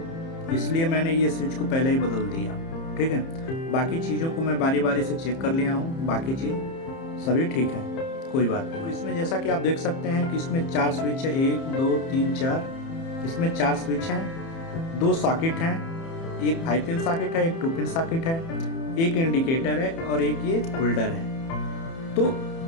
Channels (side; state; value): right; late; 30 ms